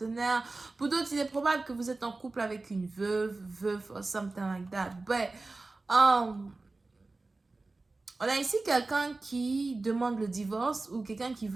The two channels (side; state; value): left; quieter; 3.4 dB